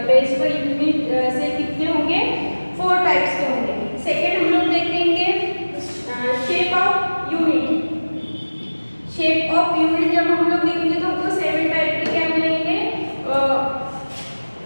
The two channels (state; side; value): inverted; both; correlation -1.00